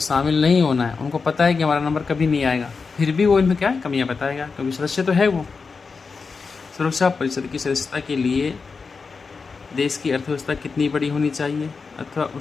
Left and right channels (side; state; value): right; quieter; 4.8 dB